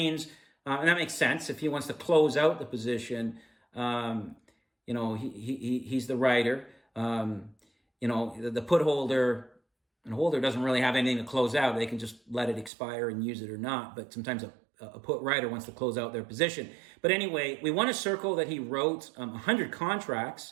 and that makes sense if he wants to close out the position. He's the writer. The put holder and holder doesn't really have anything to close out. They can just let it expire and use it or not. But sometimes a put writer wants to close out their position. But anyway, we want to circle that he wrote 100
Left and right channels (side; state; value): left; drops out; at 12.7 s